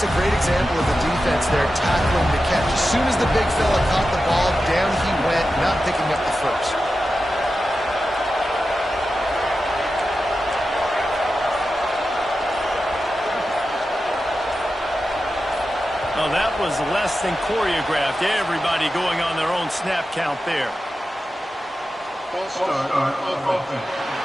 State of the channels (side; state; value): both; normal; correlation 0.92